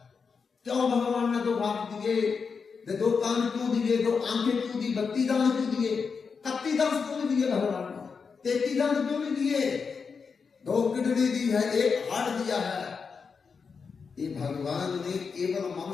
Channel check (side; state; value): right; quieter; 5.5 dB